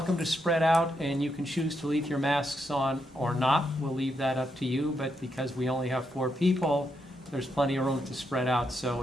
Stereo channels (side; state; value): both; normal; correlation 0.81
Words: to spread out, and you can choose to leave your masks on or not. We'll leave that up to you, but because we only have 4 people, there's plenty of room to spread out. So